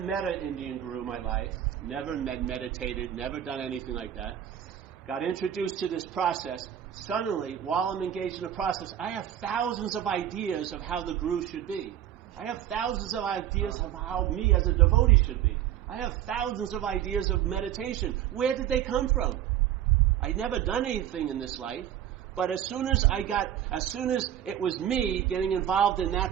an Indian guru in my life, never meditated, never done anything like that. Got introduced to this process. Suddenly, while I'm engaged in the process, I have thousands of ideas of how the guru should be. I have thousands of ideas of how me as a devotee should be. I have thousands of ideas of meditation. Where did they come from? I'd never done anything in this life, but as soon as it was me getting involved in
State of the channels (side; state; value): left; quieter; 10.9 dB